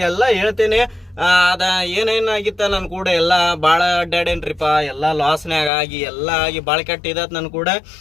ಹೇಳ್ತೇನೆ. ಅದ ಏನೇನಾಗಿತ್ತ ನನ್ನ ಕೂಡ ಎಲ್ಲ ಭಾಳ ಅಡ್ಡಾಡೇನ್ರಿಪ್ಪ. ಎಲ್ಲ ಲಾಸ್ನ್ಯಾಗ ಆಗಿ ಎಲ್ಲ ಆಗಿ ಭಾಳ ಕೆಟ್ಟಿದತ್ ನನ್ನ ಕೂಡ.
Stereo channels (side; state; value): right; drops out; at 5.7 s